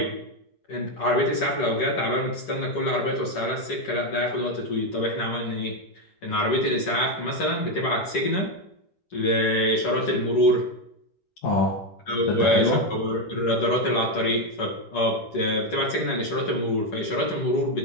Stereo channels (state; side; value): late; right; 10 ms